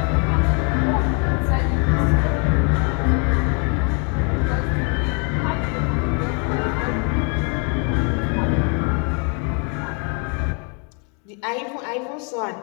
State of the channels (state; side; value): quieter; right; 35.6 dB